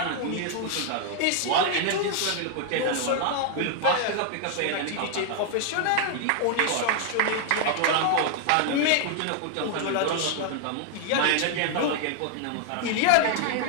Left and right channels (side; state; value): both; different; correlation 0.00